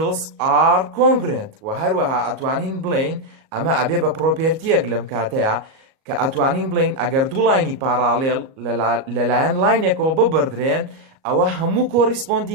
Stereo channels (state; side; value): late; left; 38 ms